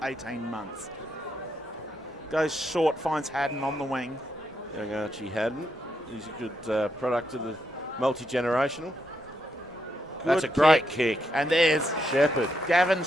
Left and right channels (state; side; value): normal; both; correlation 0.80